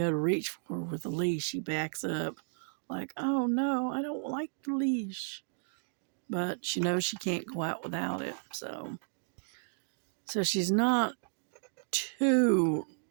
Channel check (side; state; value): left; silent; digital silence